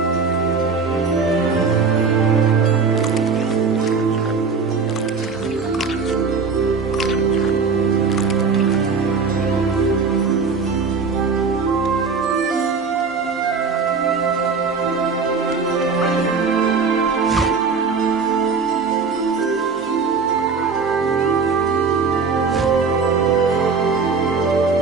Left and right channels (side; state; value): left; quieter; 5.0 dB